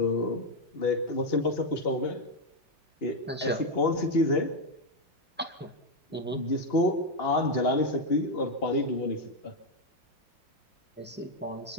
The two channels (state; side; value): normal; both; correlation 0.03